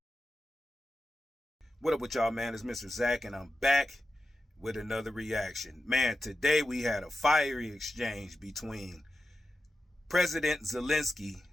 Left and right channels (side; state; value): both; normal; correlation 0.92